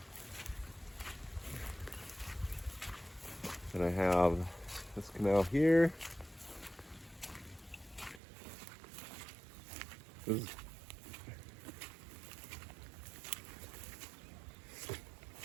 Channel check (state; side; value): drops out; left; at 8.2 s